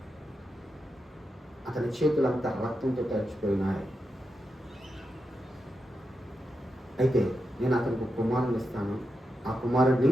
అతని చేతులంతా రక్తంతో తడిచిపోయినాయి, అయితే నేను అతనికి ఒక కుమారుని ఇస్తాను, ఆ కుమారుడిని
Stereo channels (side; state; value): both; normal; correlation 0.88